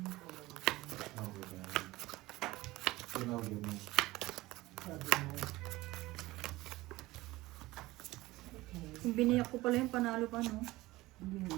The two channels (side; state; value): left; quieter; 19.0 dB